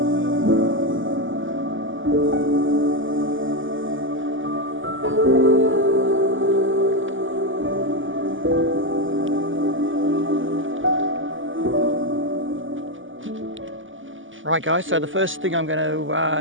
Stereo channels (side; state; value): left; late; 0.57 ms